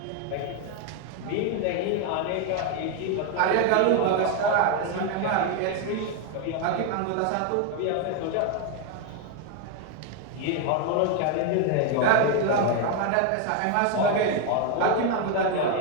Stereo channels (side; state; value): both; different; correlation 0.01